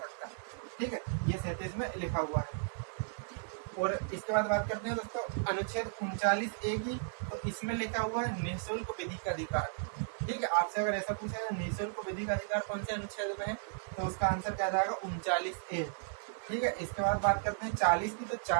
ठीक है, ये 37 में लिखा हुआ है। और इसके बाद बात करते हैं दोस्तों अनुच्छेद 39A की। तो इसमें लिखा हुआ है निःशुल्क विधिक अधिकार। ठीक है, आपसे अगर ऐसा पूछा है निःशुल्क विधिक अधिकार कौन से अनुच्छेद में है, तो उसका आंसर क्या जाएगा 39A। ठीक है, इसके बाद बात करते हैं 40 की। तो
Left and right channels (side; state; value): left; silent; 55 dB below the other